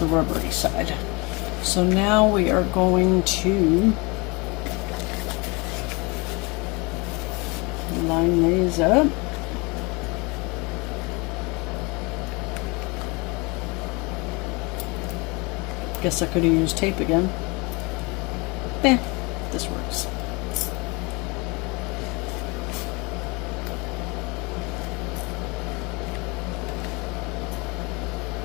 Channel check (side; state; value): right; quieter; 27.2 dB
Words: rubbery side. So now we are going to line these up. Guess I could have used tape again. Eh, this works.